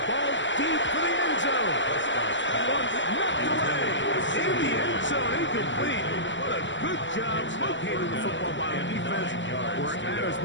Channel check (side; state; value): right; late; 0.54 ms